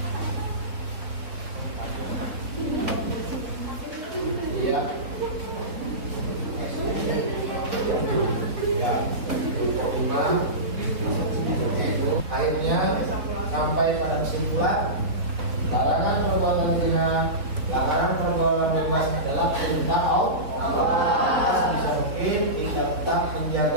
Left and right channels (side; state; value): left; late; 3.8 ms